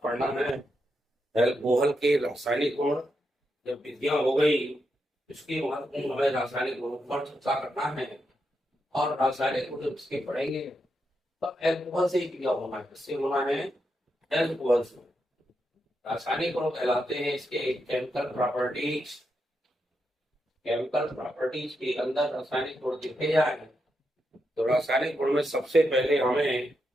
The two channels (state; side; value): normal; both; correlation 0.84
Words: पढ़ना है अल्कोहल के रासायनिक गुण। जब विधियां हो गई इसकी महत्वपूर्ण हमें रासायनिक गुणों पर चर्चा करना है, और रासायनिक गुण जब इसके पढ़ेंगे तब अल्कोहल से ही क्रिया होना है। किससे होना है? अल्कोहल से। रासायनिक गुण कहलाते हैं इसके केमिकल प्रॉपर्टीज। केमिकल प्रॉपर्टीज के अंदर रासायनिक गुण लिखे जाए तो रासायनिक गुण में सबसे पहले हमें